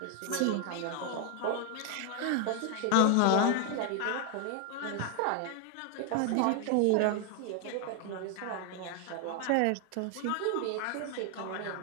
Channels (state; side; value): different; both; correlation 0.00